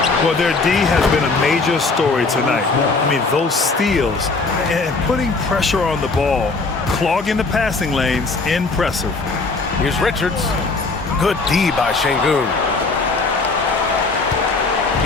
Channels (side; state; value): right; quieter; 3.8 dB